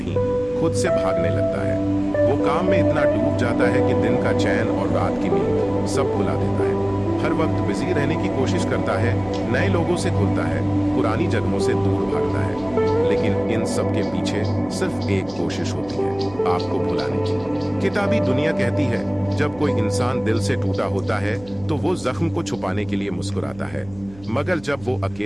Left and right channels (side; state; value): right; noise; hum, 21 dB below the sound